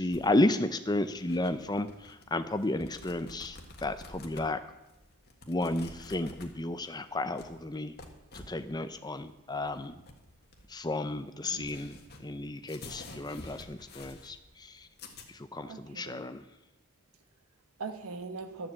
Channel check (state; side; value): normal; both; correlation 0.64